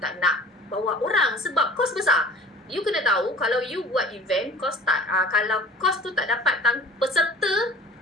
nak bawa orang. Sebab kos besar. You kena tahu kalau you buat event, kos tak, kalau kos tu tak dapat peserta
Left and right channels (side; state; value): both; normal; correlation 0.44